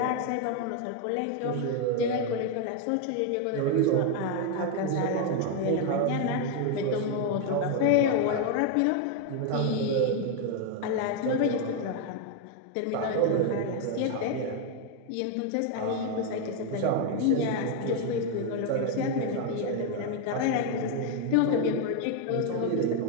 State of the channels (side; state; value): both; different; correlation 0.01